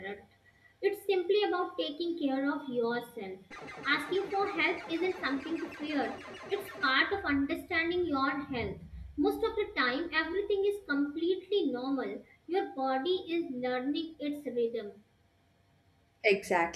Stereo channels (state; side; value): identical; both; correlation 1.00